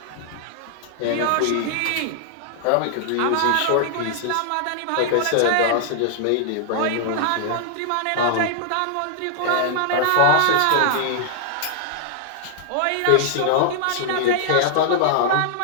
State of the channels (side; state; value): both; different; correlation -0.01